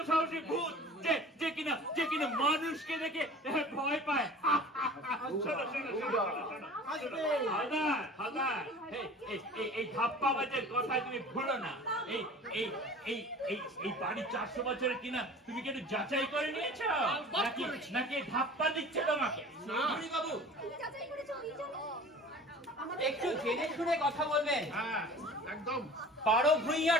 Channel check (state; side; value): normal; both; correlation 0.42